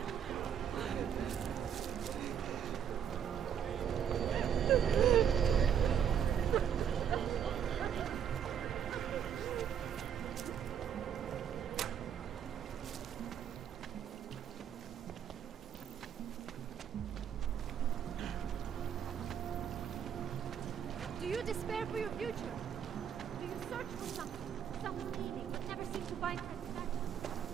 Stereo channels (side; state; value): left; quieter; 8.5 dB